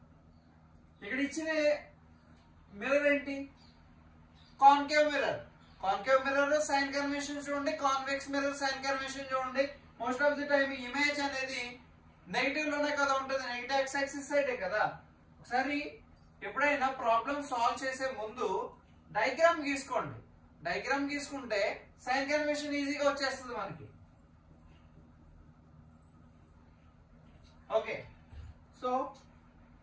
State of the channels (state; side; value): identical; both; correlation 1.00